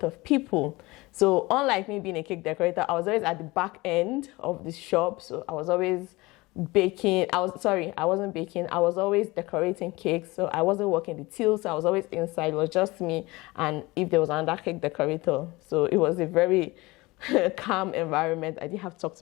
of people. So unlike me being a cake decorator, I was always at the back end of the shop. So I was always baking. I wasn't baking. I was always decorating cakes. So I wasn't working the till. So I was always inside. It was just me, and if there was another cake decorator. So it was a very calm environment. I didn't have to talk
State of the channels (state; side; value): quieter; right; 22.0 dB